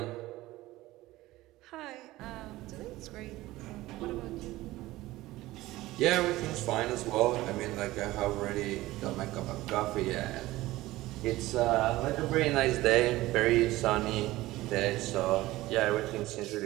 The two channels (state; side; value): quieter; left; 17.6 dB